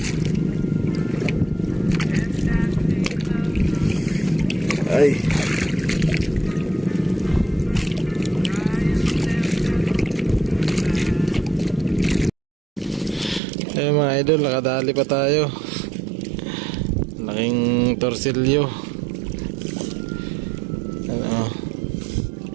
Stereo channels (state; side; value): drops out; left; at 13.4 s